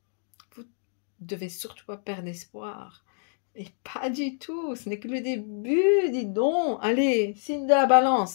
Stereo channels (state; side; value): silent; right; digital silence